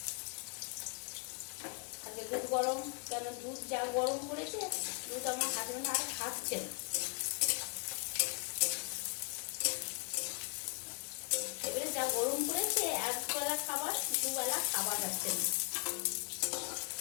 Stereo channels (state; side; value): quieter; right; 38.1 dB